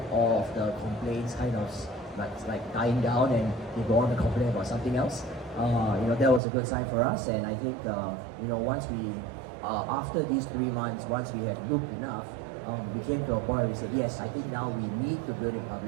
all of the complaints kind of like dying down, and they go on to complain about something else. That was a good sign for us, and I think once we after these 3 months, once we had looked enough, we came to a point where we said, yes, I think now we need to build in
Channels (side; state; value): left; drops out; at 6.4 s